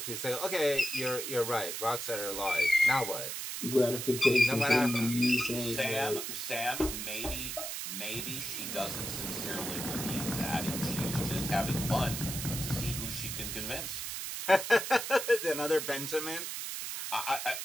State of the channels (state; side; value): noise; right; hiss, 5 dB below the sound